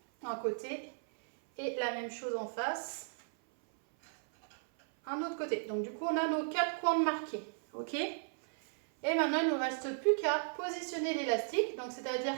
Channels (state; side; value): silent; left; 54 dB below the other